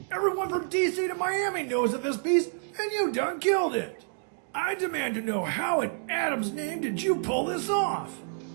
Everyone from DC to Miami knows of this piece, and you done killed it! I demand to know how in Adam's name did you pull this off?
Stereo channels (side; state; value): left; silent; digital silence